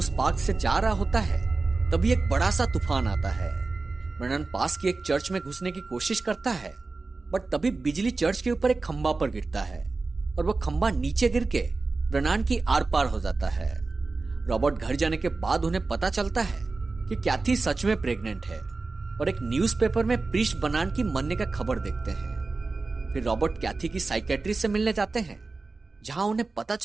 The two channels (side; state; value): left; quieter; 3.8 dB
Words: पार्क से जा रहा होता है तभी एक बड़ा सा तूफान आता है। ब्रेनन पास की एक चर्च में घुसने की कोशिश करता है बट तभी बिजली चर्च के ऊपर एक खंबा पर गिरता है और वो खंबा नीचे गिर के ब्रेनन की आर पार हो जाता है। रॉबर्ट घर जाने के बाद उन्हें पता चलता है कि कैथी सच में प्रेग्नेंट है और एक न्यूज़पेपर में प्रीस्ट ब्रेनन की मरने का खबर देखते हैं। फिर रॉबर्ट कैथी की साइकेट्रिस्ट से मिलने जाते हैं जहां उन्हें पता